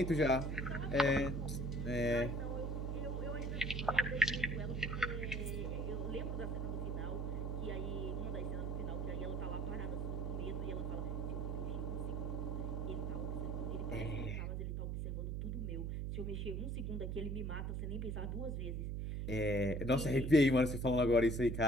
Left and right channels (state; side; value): noise; right; hum, 1 dB below the sound